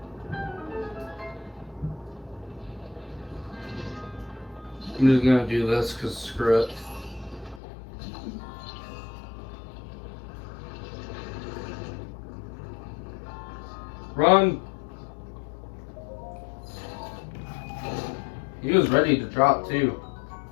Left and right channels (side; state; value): right; drops out; at 7.6 s